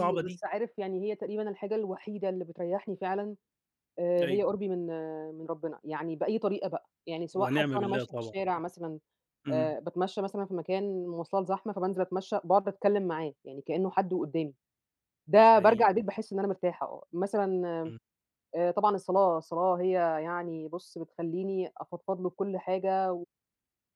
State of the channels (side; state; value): both; identical; correlation 1.00